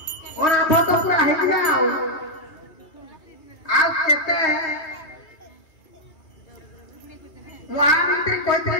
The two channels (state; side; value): late; right; 3.2 ms